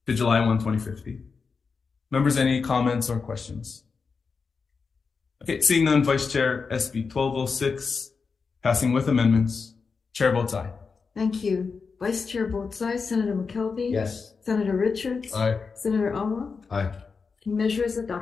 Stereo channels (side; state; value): right; quieter; 5.0 dB